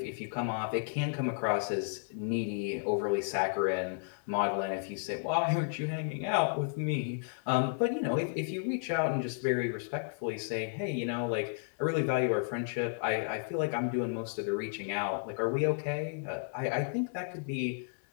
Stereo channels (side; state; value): right; silent; digital silence